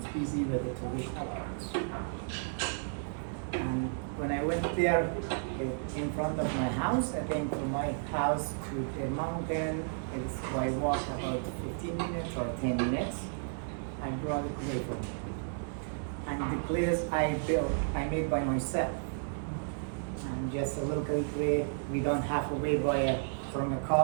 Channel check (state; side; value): silent; left; digital silence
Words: busy with the traditional arts. And when I went there, in front of my house, I think from my house to the mountain, it's by walk about 15 minutes or 10 minutes. I brought a clay from me. And the clays I built, I made by myself. And just a local clay, we don't have to wait from a